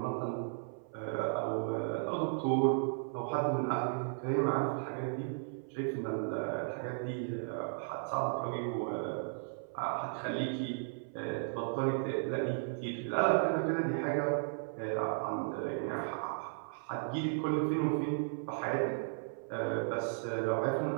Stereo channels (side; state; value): left; silent; 54 dB below the other